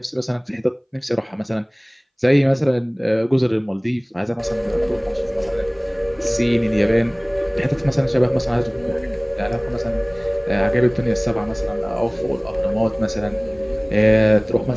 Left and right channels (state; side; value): identical; both; correlation 1.00